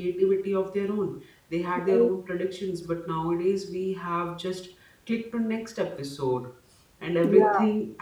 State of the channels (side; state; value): both; identical; correlation 1.00